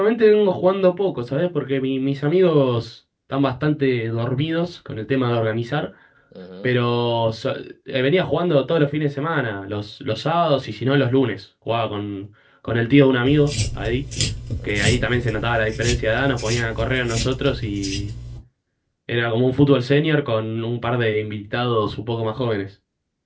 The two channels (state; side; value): identical; both; correlation 1.00